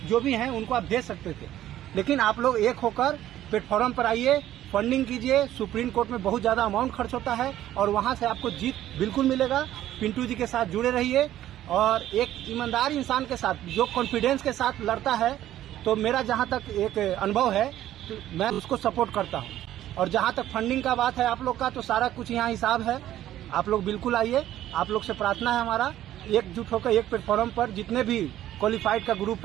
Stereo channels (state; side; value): quieter; left; 12.9 dB